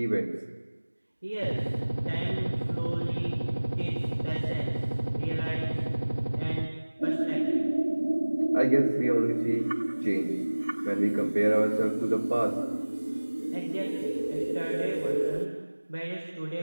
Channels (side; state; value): both; inverted; correlation -1.00